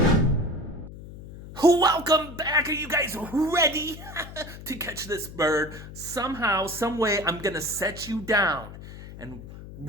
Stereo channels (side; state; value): left; noise; hum, 14 dB below the sound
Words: Welcome back. Are you guys ready to catch this bird? Somehow, some way, I'm gonna set you down, and